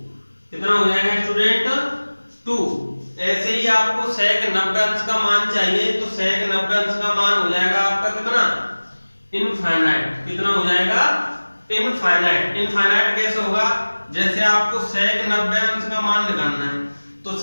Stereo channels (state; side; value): inverted; both; correlation -1.00